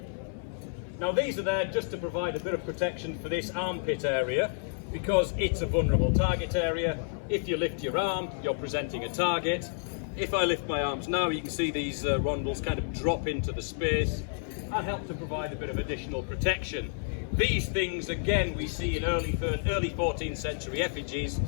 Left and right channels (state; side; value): silent; right; 58 dB below the other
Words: Now these are there just to provide a bit of protection for this armpit area, because it's a vulnerable target area. If you lift your arm, you're presenting a target. If I lift my arms now, you can see these rondelles kind of drop into the space and help to provide a bit of additional protection. These things, again, we see in early 14th century effigies.